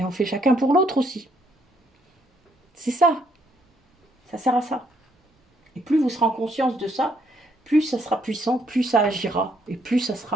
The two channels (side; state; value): both; normal; correlation 0.71